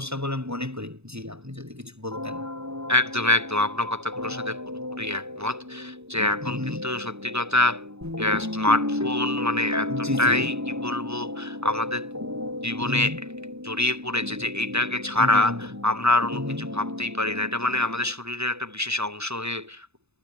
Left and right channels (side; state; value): left; late; 0.80 ms